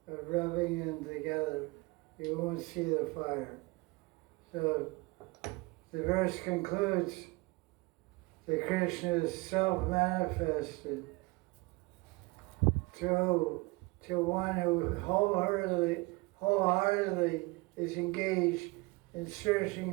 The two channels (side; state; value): left; quieter; 24.7 dB